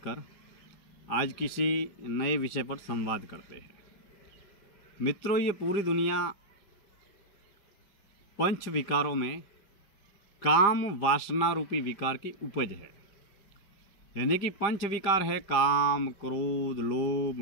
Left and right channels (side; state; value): right; late; 5.0 ms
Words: आज किसी नए विषय पर संवाद करते हैं। मित्रों, ये पूरी दुनिया पंच विकारों में काम वासना रूपी विकार की उपज है। यानी कि पंच विकार है काम, क्रोध,